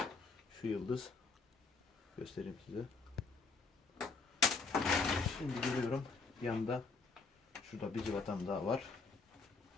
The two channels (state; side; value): quieter; right; 4.4 dB